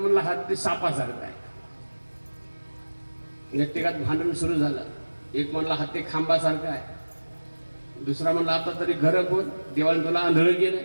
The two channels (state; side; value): inverted; both; correlation -1.00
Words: हत्ती सापासारखा आहे. व्यक्तिगत भांडण सुरू झालं. एक म्हणला हत्ती खांबासारखा आहे, दुसरा म्हणला आता तरी घर बोल, देवाने तुला आंधळ गेलं